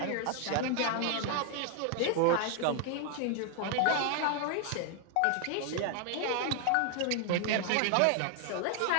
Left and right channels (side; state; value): both; different; correlation 0.00